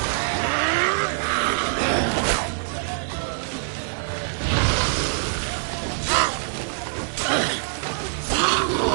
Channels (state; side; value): silent; left; digital silence